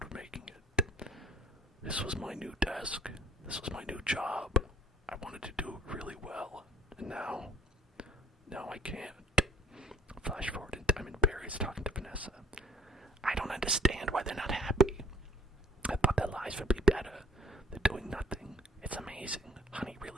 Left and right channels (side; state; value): both; normal; correlation 0.55